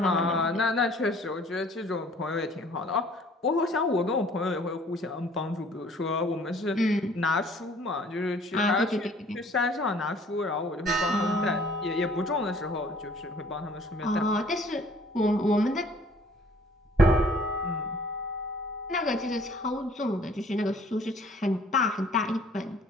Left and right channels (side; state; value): both; normal; correlation 0.56